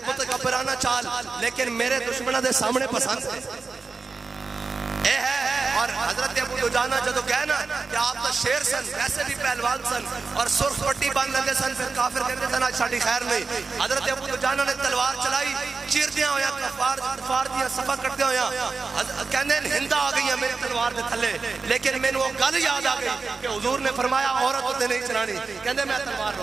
متکبرانہ چال, لیکن میرے دشمنوں دے سامنے پسند اے ہے. اور حضرت ابو دجانہ جدو گئے نا کہ آپ تو شیر سن ویسے بھی پہلوان سن اور سرخ پٹی باندھ لگے سن, پھر کافر کہتے تھے نا ساڑی خیر نہیں. حضرت ابو دجانہ نے تلوار چلائی, چیر دیا ہویا کفار دیا صفحہ کرتے ہویا کہنے ہندہ آ گئی ہے میری تلوار دے تھلے, لیکن میں نے وہ گل یاد آ گئی کہ حضور نے فرمایا عورت ہوتے نہیں چلانی, کہنے میں تلوار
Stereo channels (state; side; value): quieter; left; 4.5 dB